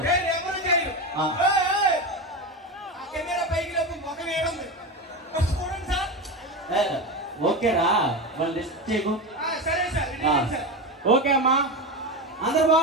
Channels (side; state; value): both; normal; correlation 0.19